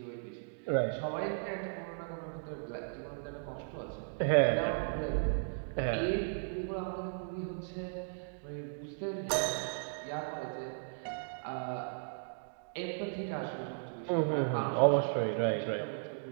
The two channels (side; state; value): left; silent; digital silence